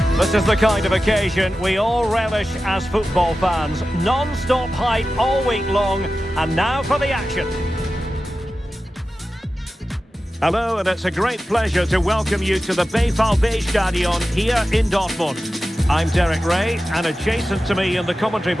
This is the kind of occasion we all relish as football fans. Non-stop hype all week long, and now for the action. Hello, and it's a great pleasure to welcome you to the Stadion here in Dortmund. I'm Derek Ray, and adjacent to me in the commentary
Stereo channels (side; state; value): both; normal; correlation 0.94